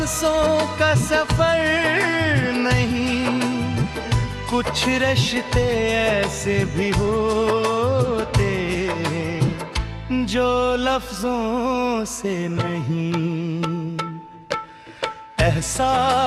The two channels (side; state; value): both; identical; correlation 1.00